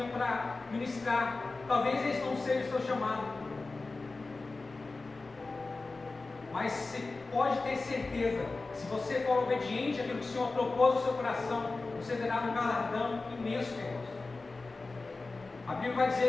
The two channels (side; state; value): right; quieter; 3.6 dB